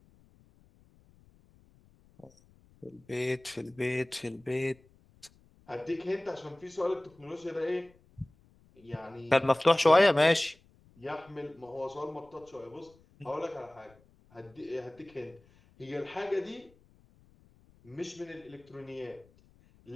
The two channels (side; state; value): left; noise; rumble, 29 dB below the sound